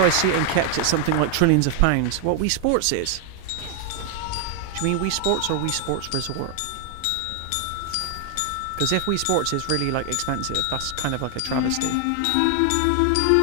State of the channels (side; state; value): both; different; correlation 0.00